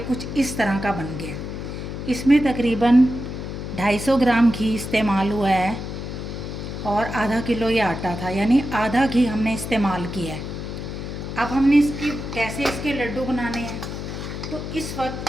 कुछ इस तरह का बन गया। इसमें तकरीबन 250 ग्राम घी इस्तेमाल हुआ है और आधा किलो ये आटा था, यानी आधा घी हमने इस्तेमाल किया है। अब हमने कैसे इसके लड्डू बनाने हैं, तो इस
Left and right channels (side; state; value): left; noise; hum, 7 dB below the sound